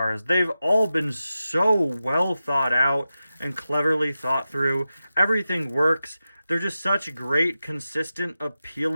They've all been so well thought out and cleverly thought through. Everything works. They're just such great, consistent,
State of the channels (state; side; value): inverted; both; correlation -0.92